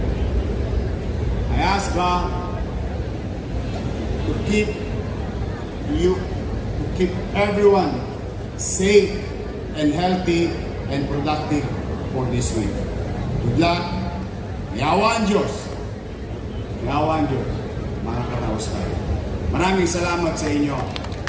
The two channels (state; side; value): identical; both; correlation 1.00